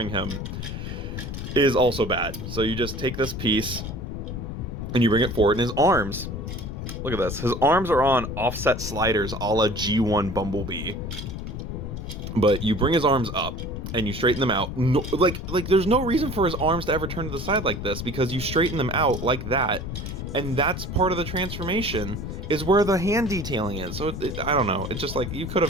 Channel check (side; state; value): left; noise; rumble, 6 dB below the sound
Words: him is also bad. So you just take this piece and you bring it forward, and his arms, look at this. His arms are on offset sliders a la G1 Bumblebee. But you bring his arms up and you straighten them out. No, like there's no reason for his arms to ever turn to the side like this, because you straighten them out like that. And that's part of the transformation, is where the hand detailing is. So I don't know. It's just like, you could